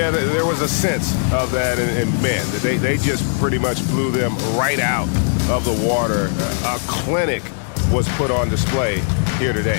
there was a sense of that, and man, they just pretty much blew them right out of the water. A clinic was put on display here today.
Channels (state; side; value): silent; right; digital silence